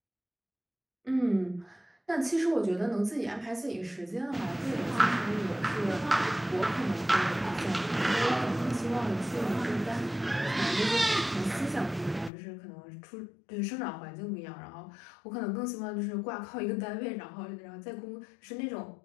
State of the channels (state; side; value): drops out; right; at 12.3 s